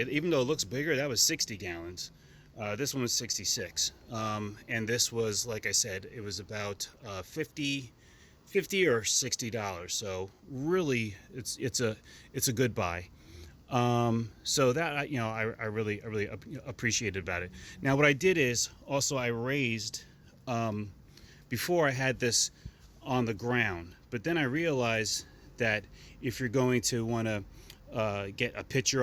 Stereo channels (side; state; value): both; identical; correlation 1.00